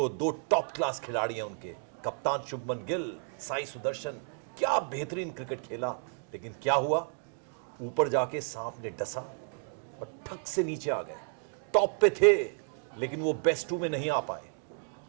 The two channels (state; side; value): silent; left; 56 dB below the other